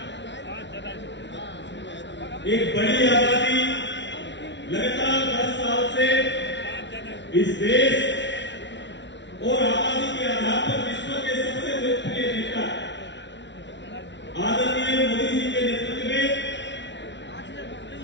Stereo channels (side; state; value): right; late; 0.52 ms